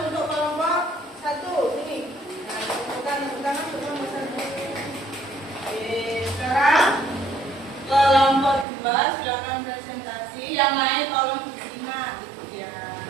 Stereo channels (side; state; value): left; drops out; at 8.7 s